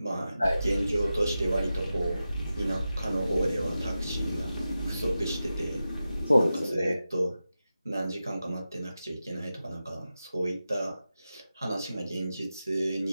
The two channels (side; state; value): both; inverted; correlation -0.92